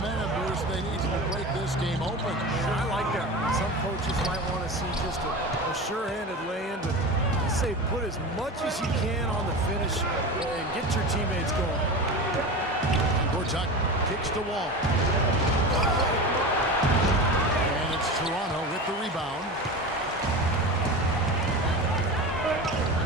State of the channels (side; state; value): both; normal; correlation 0.28